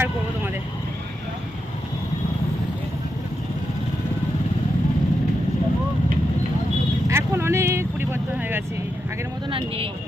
করবো তোমাদের। এখন অনেক পরিবর্তন হয়ে গেছে, আগের মতন আর নেই।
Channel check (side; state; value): both; normal; correlation 0.85